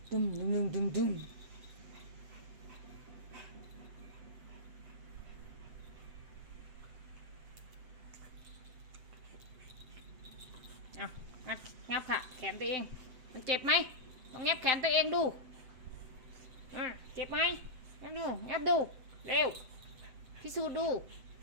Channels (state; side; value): late; left; 7.9 ms